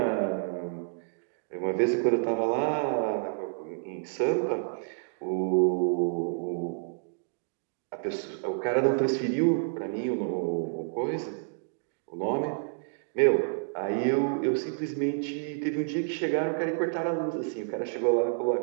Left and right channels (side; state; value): left; silent; digital silence